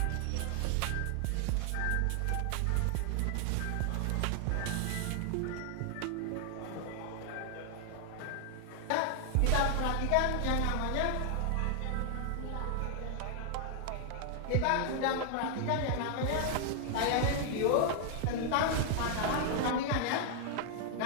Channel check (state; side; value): different; both; correlation 0.00